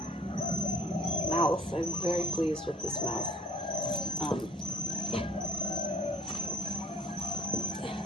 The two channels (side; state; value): both; normal; correlation 0.56